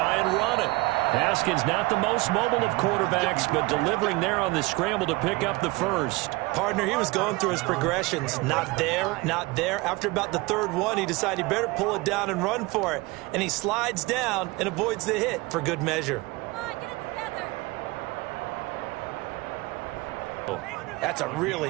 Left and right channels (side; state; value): left; quieter; 23.0 dB